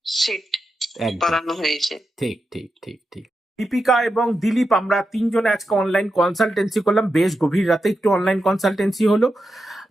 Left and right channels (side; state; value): both; normal; correlation 0.88